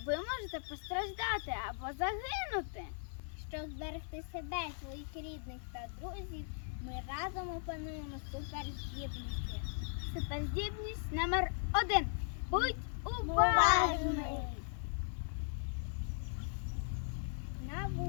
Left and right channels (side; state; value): right; silent; 52 dB below the other